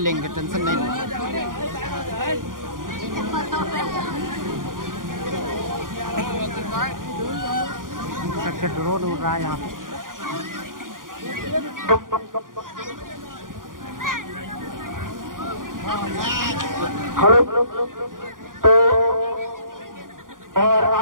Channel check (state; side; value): late; left; 0.90 ms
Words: टेंशन नहीं। ड्रोन उड़ रहा है यहाँ पे। हेलो। तो और